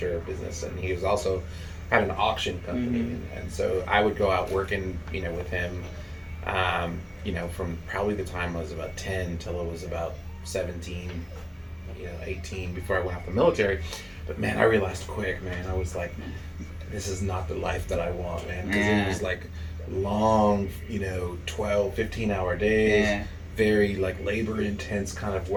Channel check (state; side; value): identical; both; correlation 1.00